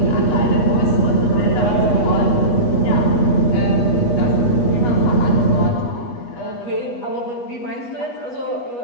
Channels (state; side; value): late; right; 8.3 ms